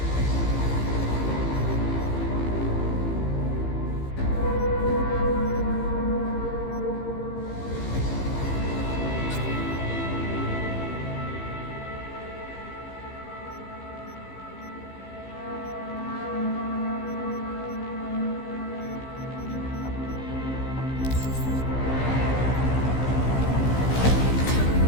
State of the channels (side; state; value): right; late; 15 ms